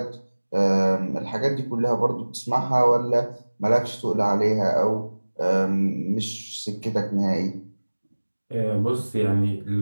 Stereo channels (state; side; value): inverted; both; correlation -1.00